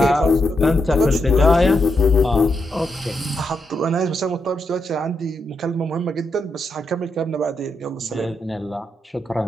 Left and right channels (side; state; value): both; normal; correlation 0.83